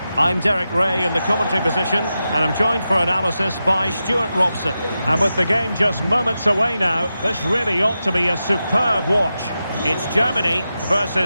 I'm Derek Ray in the commentary position, and I'm joined for analysis by Stuart Robson. And with the game just moments away now, this really ought to be a superb watch. It's Germany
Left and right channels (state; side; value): inverted; both; correlation -0.90